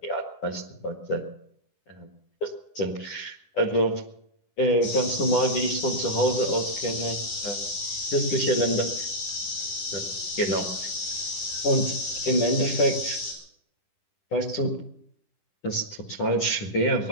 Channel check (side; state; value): right; late; 10 ms